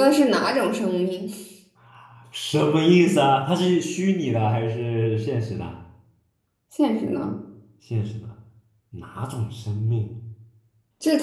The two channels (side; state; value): both; identical; correlation 1.00